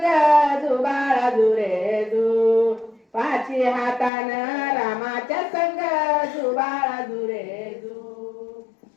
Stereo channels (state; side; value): drops out; right; at 4.1 s